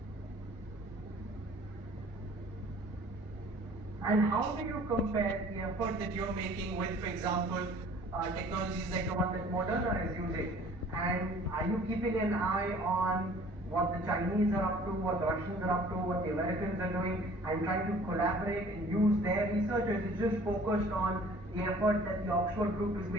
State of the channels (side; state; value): both; normal; correlation 0.51